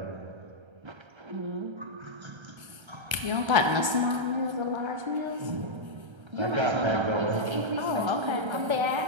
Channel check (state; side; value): late; left; 1.3 ms